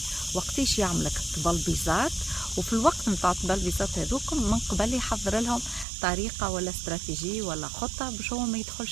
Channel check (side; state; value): left; drops out; at 5.9 s